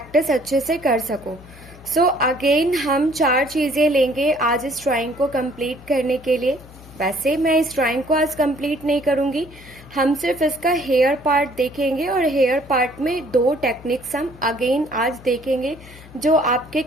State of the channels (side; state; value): left; noise; hum, 20 dB below the sound